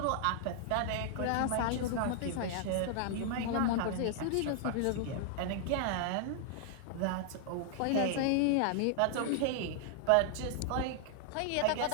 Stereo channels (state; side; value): different; both; correlation -0.01